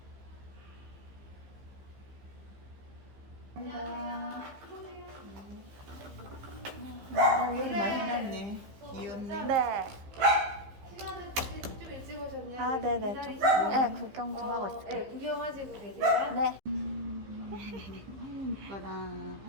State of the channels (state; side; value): late; left; 15 ms